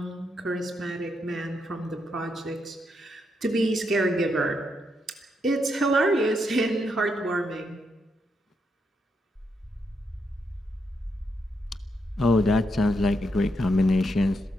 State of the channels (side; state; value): both; normal; correlation 0.80